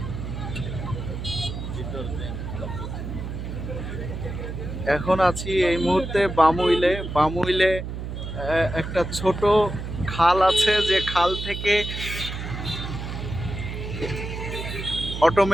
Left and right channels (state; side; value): noise; right; hum, 6 dB below the sound